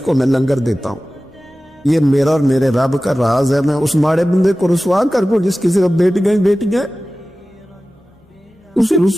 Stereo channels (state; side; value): normal; both; correlation 0.96